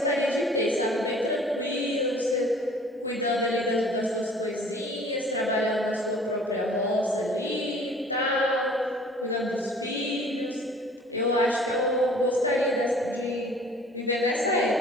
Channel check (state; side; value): normal; both; correlation 0.51